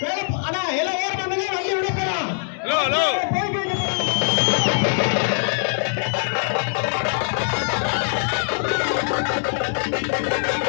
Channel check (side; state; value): right; silent; digital silence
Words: அண்ணா எல்லாம் ஏற பண்ணுங்க. வண்டி விட போறோம்.